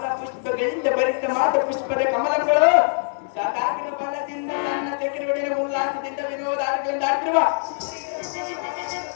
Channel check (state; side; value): silent; right; digital silence